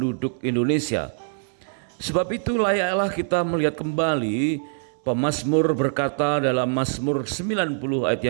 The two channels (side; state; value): left; silent; 63 dB below the other